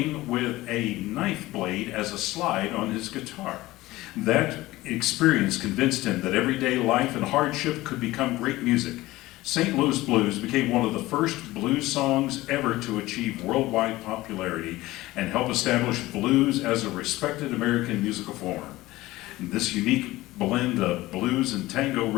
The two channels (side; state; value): right; quieter; 18.1 dB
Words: with a knife blade as a slide on his guitar. That experience convinced him that everyday life and hardship could become great music. St. Louis Blues became one of the first blues songs ever to achieve worldwide popularity and help establish blues as a respected American musical form. And this unique blend of blues and tango